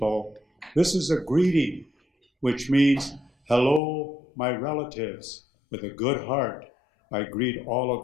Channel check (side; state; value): right; drops out; at 3.8 s